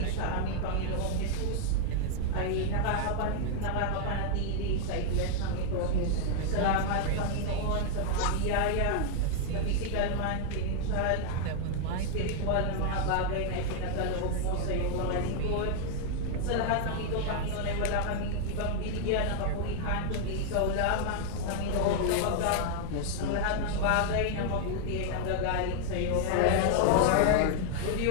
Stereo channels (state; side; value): different; both; correlation 0.00